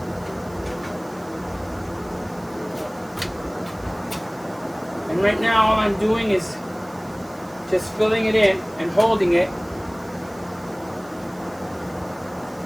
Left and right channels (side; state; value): right; noise; hiss, 24 dB below the sound